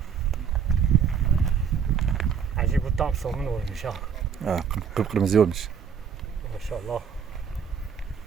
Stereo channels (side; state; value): left; quieter; 7.1 dB